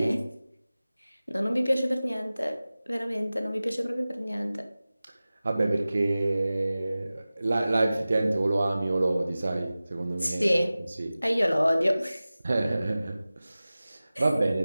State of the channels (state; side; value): inverted; both; correlation -0.97